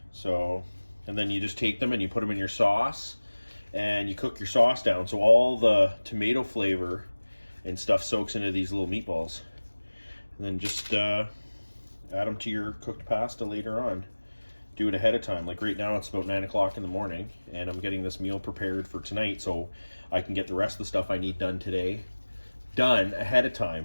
So, and then you just take them and you put them in your sauce and you cook your sauce down so all the tomato flavor and stuff soaks into these little meatballs, and then just add them to your cooked pasta later on. Do it ahead of time. Like right now it's about 9 o'clock in the morning and I'm getting this meal prepared for tonight so I can get the rest of the stuff I need done today done ahead of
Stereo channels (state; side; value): inverted; both; correlation -1.00